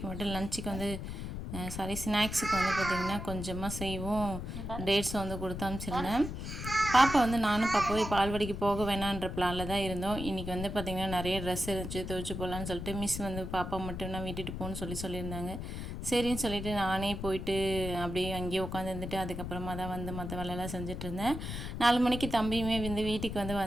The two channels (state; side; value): noise; left; rumble, 6 dB below the sound